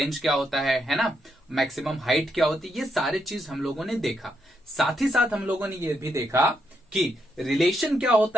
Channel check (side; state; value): both; normal; correlation 0.79